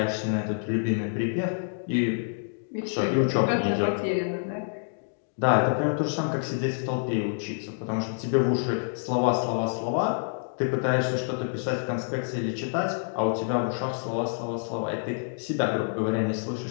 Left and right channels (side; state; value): right; silent; digital silence